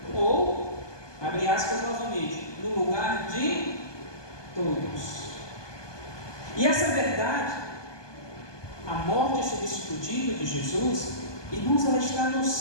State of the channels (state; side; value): late; right; 1.2 ms